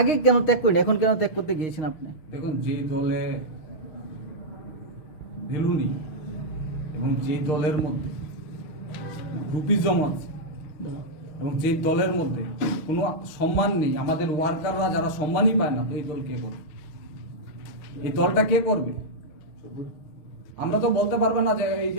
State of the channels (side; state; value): right; late; 6.3 ms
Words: কেন ত্যাগ করেন, এখন কেন ত্যাগ করতে গিয়েছেন আপনি? দেখুন, যে দলে ভ্যালু নেই এবং যে দলের মধ্যে গ্রুপিজম আছে এবং যে দলের মধ্যে কোনো সম্মান নেই, আমাদের ওয়ার্কাররা যারা সম্মানই পায় না, তো এই দল কে করবে? এই দলটা কে করবে? আমরা তো বলতে পারবে না যে এই